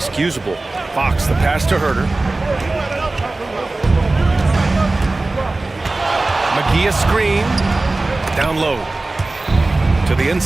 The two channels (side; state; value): left; quieter; 3.1 dB